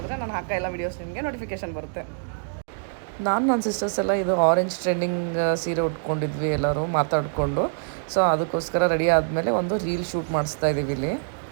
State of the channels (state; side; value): silent; left; digital silence